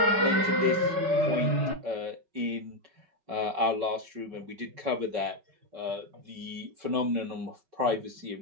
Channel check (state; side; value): late; left; 5.3 ms